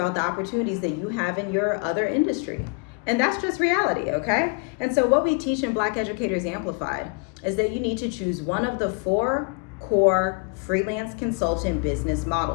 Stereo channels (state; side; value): quieter; right; 34.4 dB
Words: the opportunities that you have in your other industry. And that's just reality, okay? And so what we teach in Black Educators Amplified is that you need to choose one of the 4 core freelance consultant business